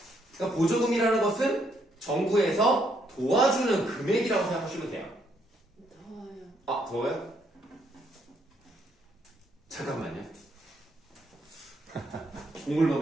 그러니까 보조금이라는 것은 정부에서 도와주는 금액이라고 생각하시면 돼요. 더워요. 더워요? 잠깐만요. 공을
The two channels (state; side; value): normal; both; correlation 0.72